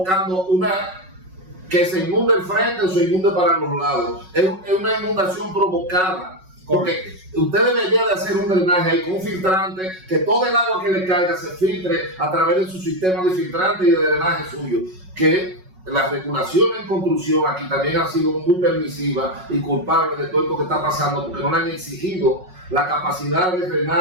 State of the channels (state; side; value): late; left; 5.4 ms